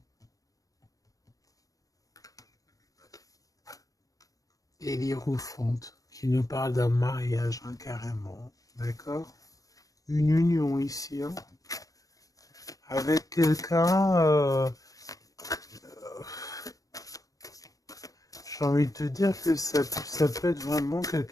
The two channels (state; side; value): late; right; 0.17 ms